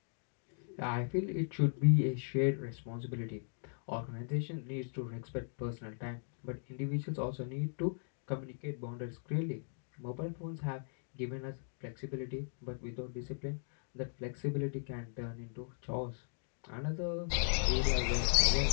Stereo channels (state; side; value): silent; right; digital silence